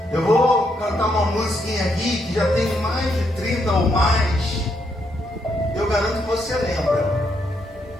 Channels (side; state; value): both; normal; correlation 0.77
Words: Eu vou cantar uma musiquinha aqui que já tem mais de 30 ou mais. Eu garanto que você lembra.